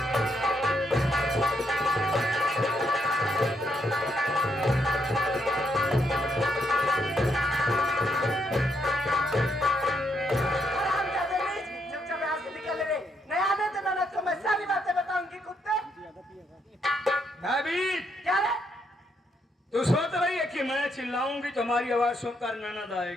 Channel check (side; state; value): both; normal; correlation 0.76